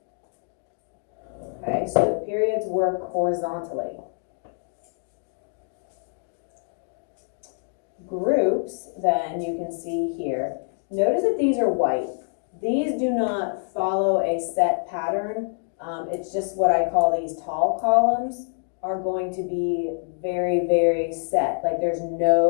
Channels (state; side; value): silent; right; 61 dB below the other